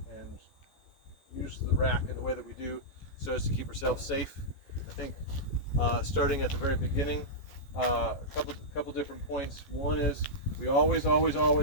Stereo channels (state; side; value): late; right; 14 ms